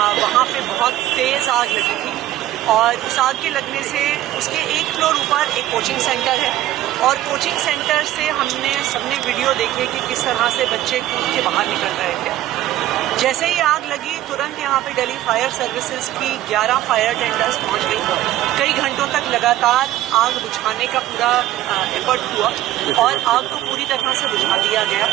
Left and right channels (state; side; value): quieter; left; 14.1 dB